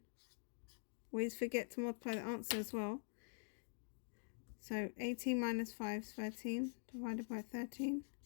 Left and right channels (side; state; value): right; silent; digital silence